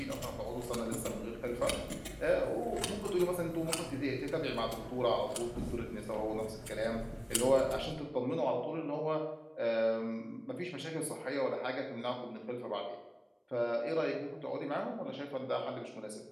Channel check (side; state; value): both; identical; correlation 1.00